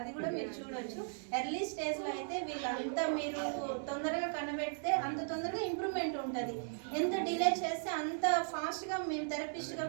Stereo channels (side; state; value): left; silent; digital silence